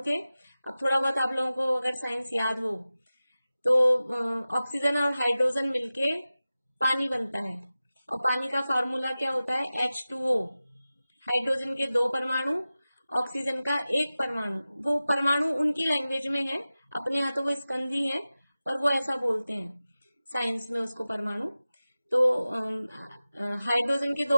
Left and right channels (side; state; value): both; inverted; correlation -0.96